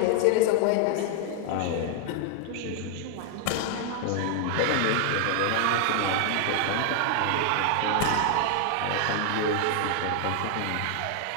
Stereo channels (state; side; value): different; both; correlation 0.00